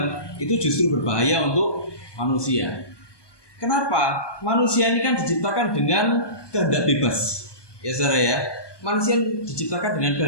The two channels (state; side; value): late; right; 1.2 ms